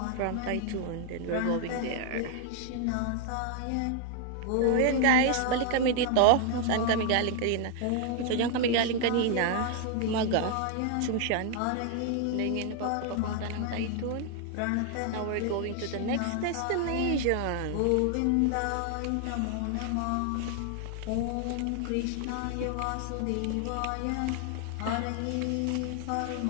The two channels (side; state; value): both; different; correlation 0.00